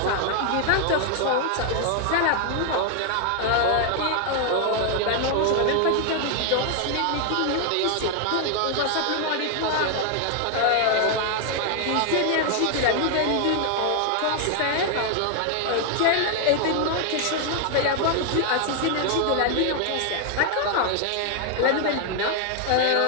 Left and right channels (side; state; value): both; different; correlation 0.00